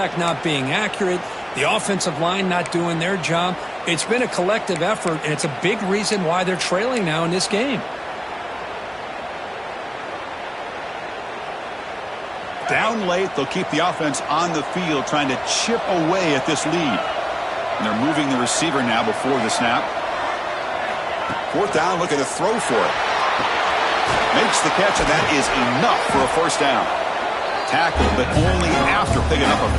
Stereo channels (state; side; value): identical; both; correlation 1.00